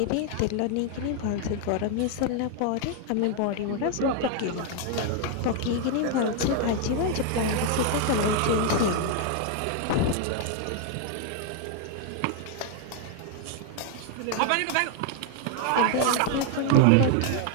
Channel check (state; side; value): different; both; correlation 0.00